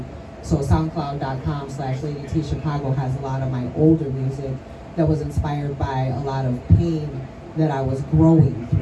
So soundcloud.com/LadyT Chicago has a lot of my older music that was inspired by a lot of pain that I was growing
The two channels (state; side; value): identical; both; correlation 1.00